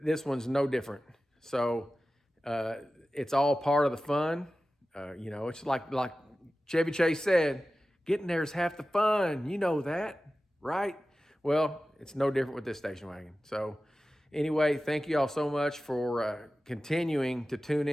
this one's no different. So it's all part of the fun. It's like Chevy Chase said, getting there is half the fun. You know that, right? Well, it's no different with this station wagon. So anyway, thank you all so much for continuing to tune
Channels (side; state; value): both; normal; correlation 0.95